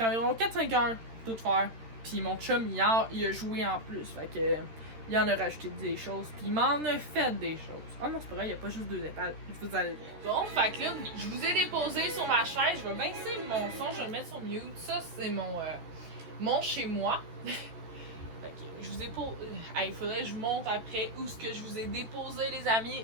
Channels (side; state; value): left; late; 13 ms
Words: environ 4-5 heures tout faire. Puis mon chum, il a joué en plus. Fait que, il en a rajouté des choses. Puis il m'en a fait des choses. Oh non, c'est pas vrai, il n'y a pas juste 2 étages. Vous allez voir. Bon, fait que là, je vous ai déposé sur ma chaise. Je vais baisser mon son, je vais le mettre sur mute. Ça, c'est mon chez moi. Je vous ai il faudrait que je vous montre après où ce que je vous ai déposé, les